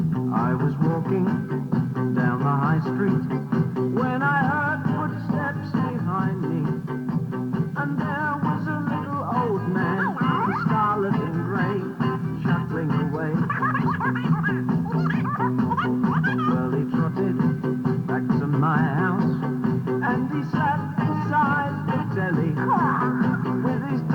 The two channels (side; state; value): both; identical; correlation 1.00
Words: I was walking down the high street when I heard footsteps behind me, and there was a little old man, scarlet and grey, shuffling away. Well, he trotted back to my house, and he sat beside the telly with his